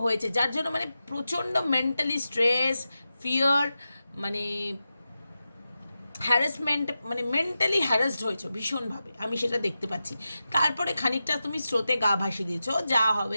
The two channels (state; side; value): inverted; both; correlation -0.92